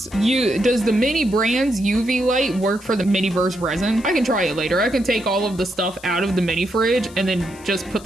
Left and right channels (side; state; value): left; noise; hiss, 21 dB below the sound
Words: does the Mini Brands UV light work for the Miniverse resin? I can try it later. I can take all of the stuff out of the mini fridge and then just put